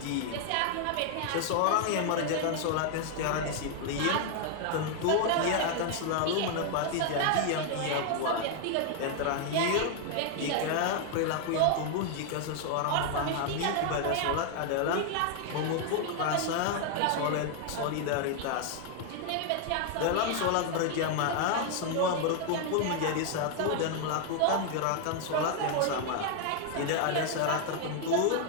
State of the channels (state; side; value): different; both; correlation 0.00